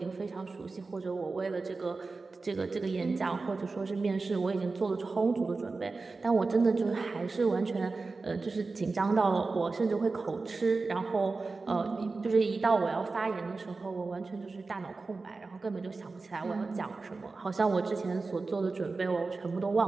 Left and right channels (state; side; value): quieter; left; 3.9 dB